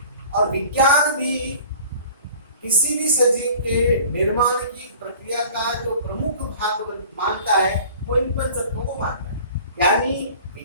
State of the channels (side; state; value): both; inverted; correlation -0.46